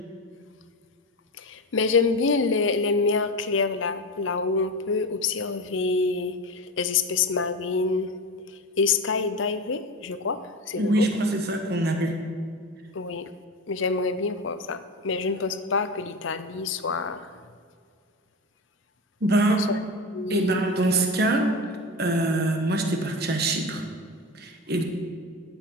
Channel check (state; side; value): normal; both; correlation 0.23